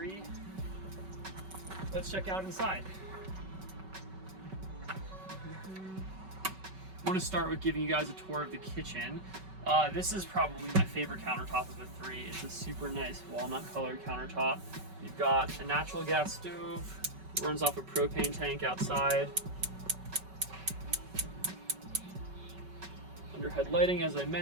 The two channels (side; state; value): left; late; 5.3 ms